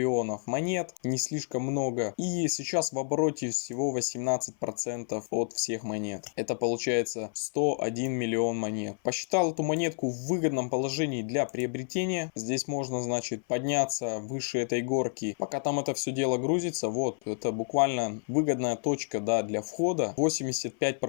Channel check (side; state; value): right; silent; 57 dB below the other